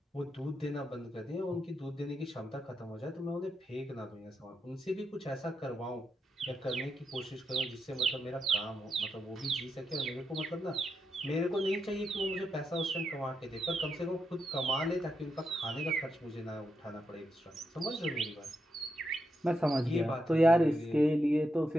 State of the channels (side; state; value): both; normal; correlation 0.84